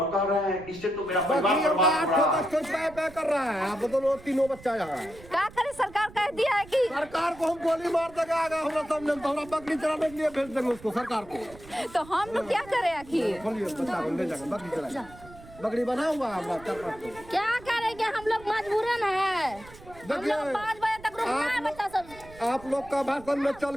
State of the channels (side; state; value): right; noise; rumble, 20 dB below the sound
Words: कह रहे हैं इससे तो मेरा परिवार बर्बाद हो रहा है। कर रहा है, आप दोनों तीनों बच्चा यहाँ है। क्या करे, सरकार कह दिया है कि सरकार को हम गोली मार देगा, हमरा सामने हमरा बकरी चराने के लिए भेज देंगे उसको सरकार को। तो हम लोग क्या करें आखिर? खोलिए बच्चा को ले जाकर बकरी चराएगा, बकरी बना हुआ है। क्या करेंगे, हम लोग मजबूरन है। हम लोग 5 बजे तक रुकना है बच्चा सब। आप लोग का भाषण में चल